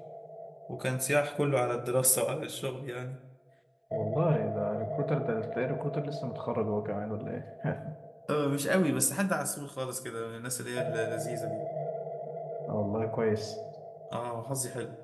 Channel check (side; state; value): both; identical; correlation 1.00